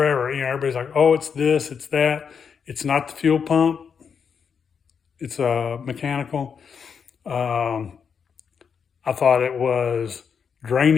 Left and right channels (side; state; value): right; quieter; 6.6 dB